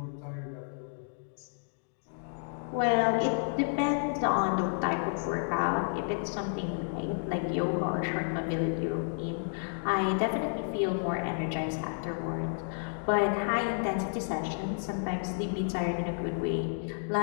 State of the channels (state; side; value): silent; right; digital silence